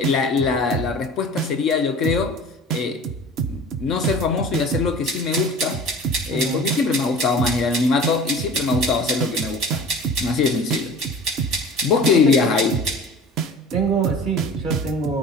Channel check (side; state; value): both; normal; correlation 0.41